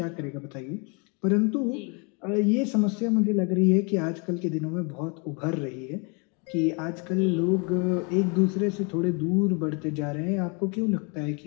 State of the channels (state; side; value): quieter; right; 33.4 dB